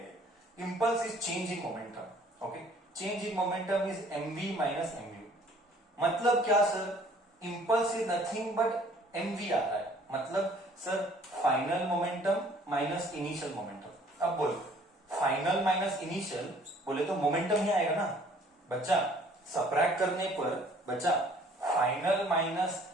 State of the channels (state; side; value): normal; both; correlation 0.56